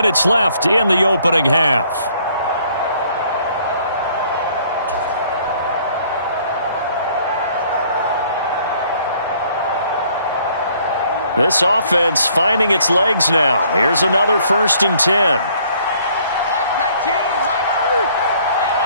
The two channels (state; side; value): inverted; both; correlation -0.61